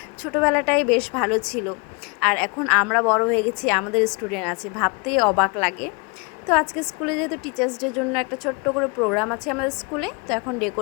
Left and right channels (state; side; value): quieter; right; 31.6 dB